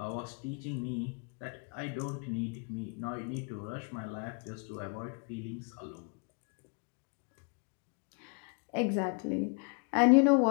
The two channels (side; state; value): right; quieter; 37.6 dB